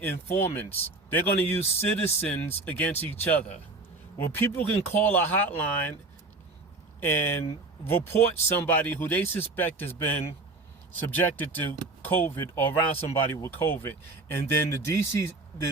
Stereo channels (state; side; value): quieter; left; 3.3 dB